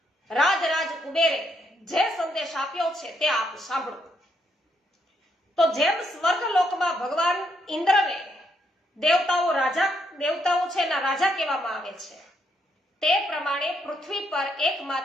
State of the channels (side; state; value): both; normal; correlation 0.75